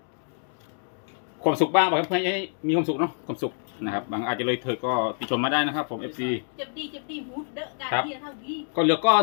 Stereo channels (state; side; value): silent; right; digital silence